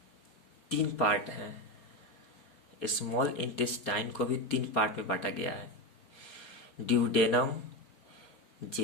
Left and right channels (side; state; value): right; late; 4.3 ms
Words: 3 पार्ट हैं। स्मॉल इंटेस्टाइन को भी 3 पार्ट में बांटा गया है, ड्यूडेनम,